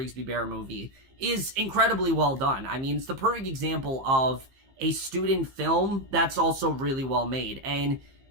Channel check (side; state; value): left; late; 15 ms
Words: Bear movie is incredibly well done. I mean, it's the perfect example of a student film that's also really well made. And